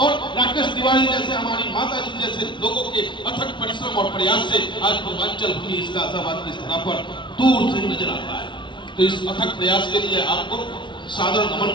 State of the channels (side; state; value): right; late; 0.23 ms